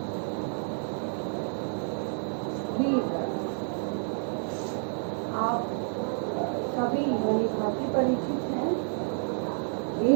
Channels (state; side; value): silent; left; 58 dB below the other